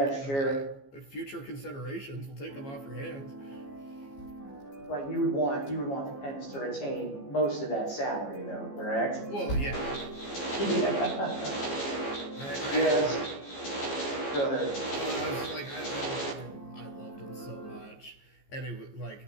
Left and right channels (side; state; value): right; late; 15 ms